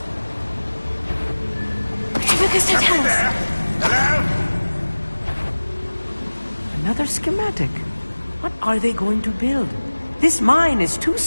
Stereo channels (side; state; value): both; inverted; correlation -1.00